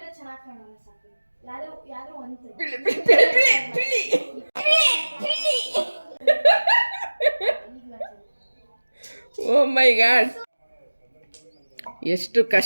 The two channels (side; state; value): both; inverted; correlation -1.00